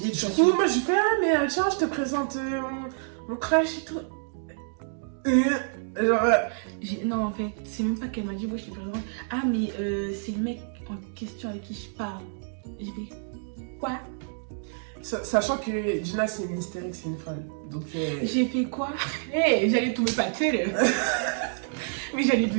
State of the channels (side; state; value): left; silent; digital silence